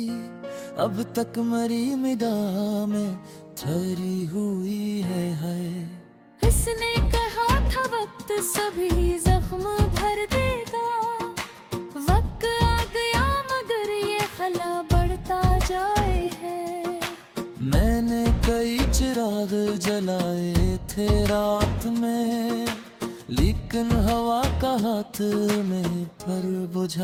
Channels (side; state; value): both; identical; correlation 1.00